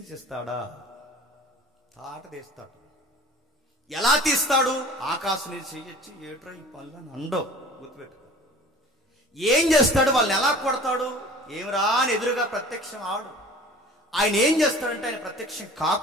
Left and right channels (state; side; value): normal; both; correlation 0.44